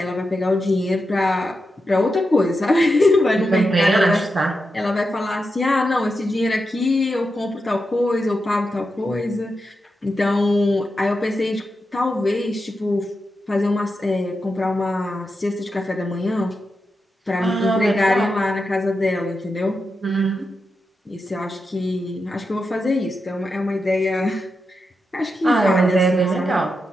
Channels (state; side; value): normal; both; correlation 0.88